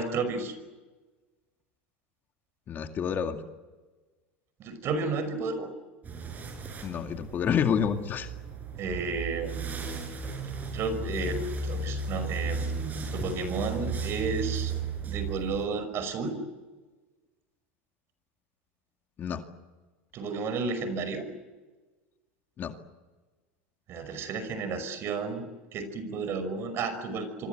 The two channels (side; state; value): both; normal; correlation 0.35